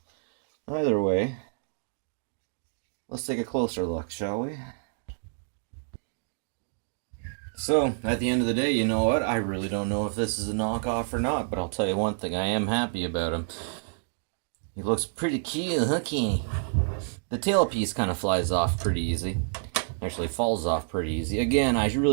Either way, let's take a closer look, shall we? So, at the end of the day, you know what? I really don't know if this is a knockoff or not, but I'll tell you one thing, I am happy about him. He looks pretty cute, hooky. The tailpiece kind of flies off pretty easy. Actually falls off pretty easy. Again, I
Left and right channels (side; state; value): left; silent; digital silence